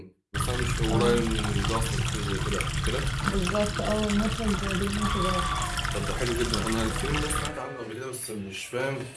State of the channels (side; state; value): both; identical; correlation 1.00